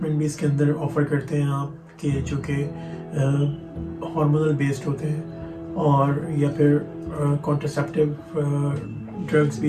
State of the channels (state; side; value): identical; both; correlation 1.00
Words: भी इसके अंदर ऑफ़र करते हैं आप कि जो कि हार्मोनल बेस्ड होते हैं, और या फिर कॉन्ट्रासेप्टिव ड्रग्स भी